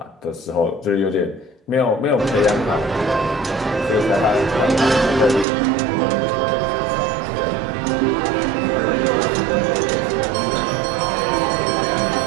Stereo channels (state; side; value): drops out; left; at 5.5 s